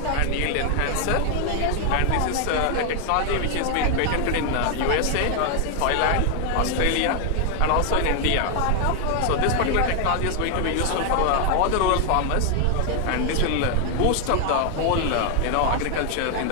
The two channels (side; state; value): both; different; correlation 0.00